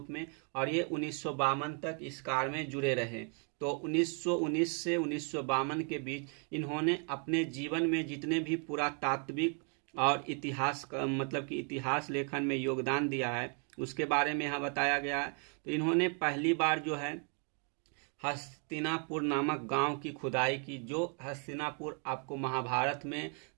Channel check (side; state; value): left; quieter; 39.8 dB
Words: में, और ये 1952 तक इस कार्य में जुड़े रहे। तो 1919 से 1952 के बीच इन्होंने अपने जीवन में जितने भी पुरातात्विक और इतिहास मतलब कि इतिहास लेखन में योगदान दिया है उसके बारे में यहाँ बताया गया है। तो इन्होंने पहली बार जो है हस्तिनापुर नामक गांव की खुदाई की। जो हस्तिनापुर आपको महाभारत में